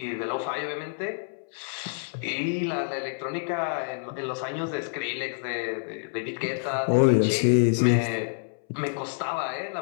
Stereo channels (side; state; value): right; silent; 60 dB below the other